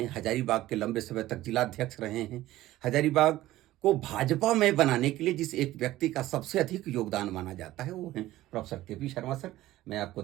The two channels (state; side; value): quieter; left; 15.7 dB